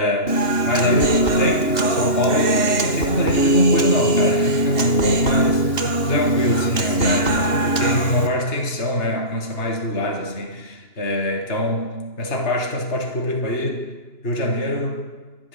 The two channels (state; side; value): late; right; 2.9 ms